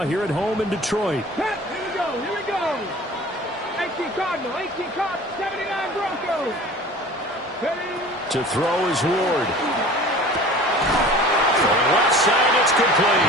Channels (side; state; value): both; normal; correlation 0.42